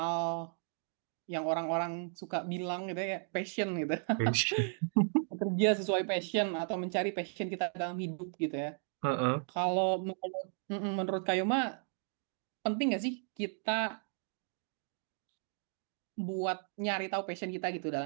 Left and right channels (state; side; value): silent; left; 54 dB below the other